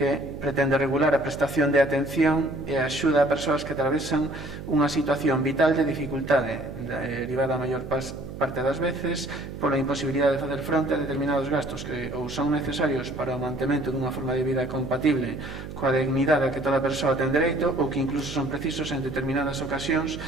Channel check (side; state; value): right; noise; hum, 11 dB below the sound